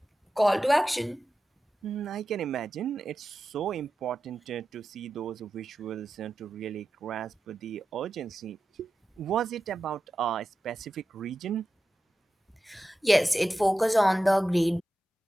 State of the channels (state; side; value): normal; both; correlation 0.92